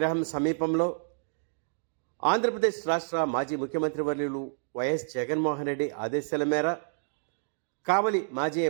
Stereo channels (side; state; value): left; silent; digital silence